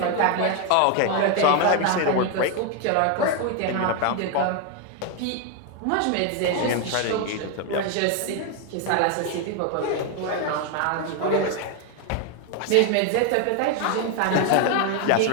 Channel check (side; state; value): both; different; correlation 0.01